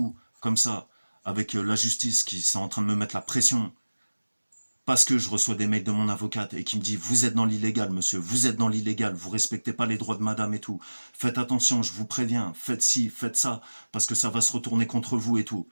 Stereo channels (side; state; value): both; inverted; correlation -1.00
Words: comme ça, avec la justice qui sont en train de me mettre la pression parce que je reçois des mails de mon avocate et qui me dit vous êtes dans l'illégal monsieur, vous êtes dans l'illégal, vous respectez pas les droits de madame et tout, faites attention, je vous préviens, faites ci, faites ça, parce que ça va se retourner contre vous et tout.